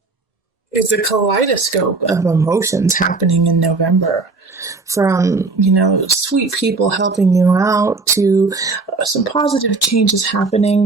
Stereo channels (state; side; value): quieter; left; 3.8 dB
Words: it's a kaleidoscope of emotions happening in November. From, sweet people helping you out to some positive changes